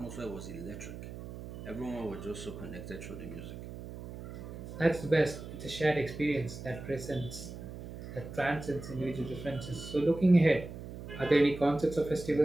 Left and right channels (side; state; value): right; noise; hum, 11 dB below the sound